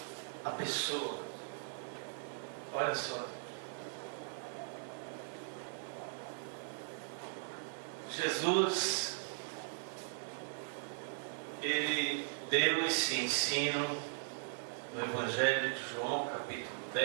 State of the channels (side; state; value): left; silent; 52 dB below the other